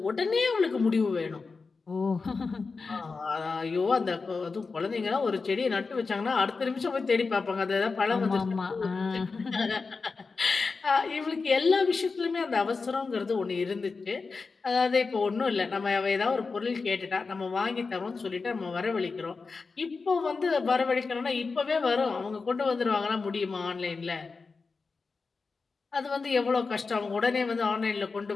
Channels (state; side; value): quieter; right; 4.4 dB